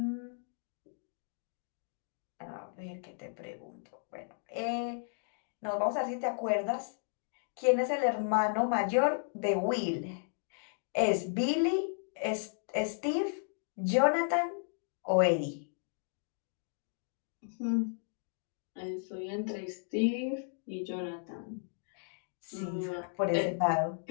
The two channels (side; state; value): right; silent; digital silence